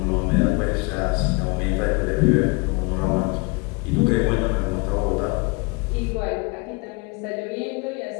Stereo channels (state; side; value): quieter; right; 29.3 dB